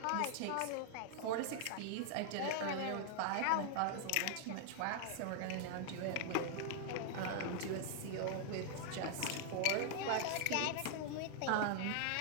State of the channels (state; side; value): different; both; correlation 0.00